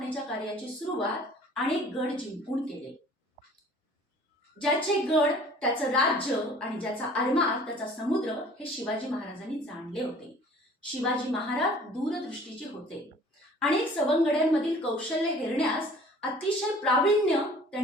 कार्याची सुरुवात अनेक गड जिंकून केले. ज्याचे गड त्याचं राज्य आणि ज्याचा आरमार त्याचा समुद्र हे शिवाजी महाराजांनी जाणले होते. शिवाजी महाराज दूरदृष्टीचे होते. अनेक सवंगड्यांमधील कौशल्य हेरण्यास अतिशय प्रावीण्य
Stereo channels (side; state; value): both; normal; correlation 0.50